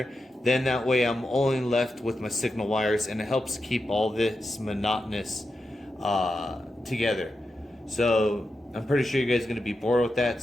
Then that way I'm only left with my signal wires, and it helps keep all this monotonous together. So I'm pretty sure you guys are going to be bored with that,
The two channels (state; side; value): normal; both; correlation 0.89